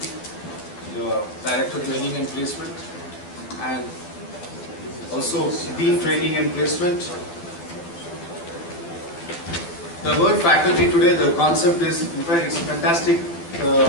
your Director Training and Placement, and also Dean Training and Placement. The word faculty today, the concept is, in fact, it's a fantastic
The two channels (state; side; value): late; right; 12 ms